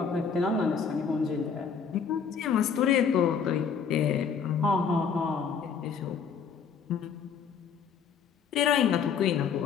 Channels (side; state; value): right; quieter; 6.5 dB